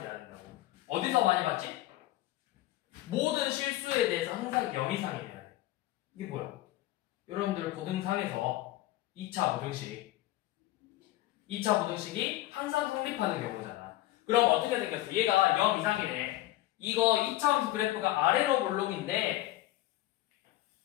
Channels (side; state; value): right; quieter; 16.1 dB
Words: 돼야 된다고. 어디서 많이 봤지? 모든 실수에 대해서 항상 0 이상이 돼야 돼. 이게 뭐야? 여러분들 고등상에서 2차 부등식이 항상 성립하는 경우잖아. 그럼 어떻게 생겼어? 얘가 0 이상이네. 이거 2차함수 그래프가 아래로 볼록인데